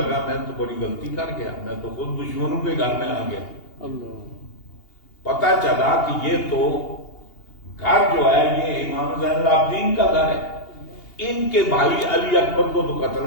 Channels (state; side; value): late; right; 2.8 ms